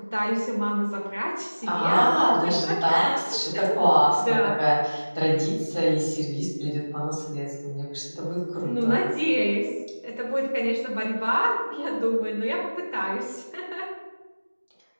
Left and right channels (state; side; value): inverted; both; correlation -1.00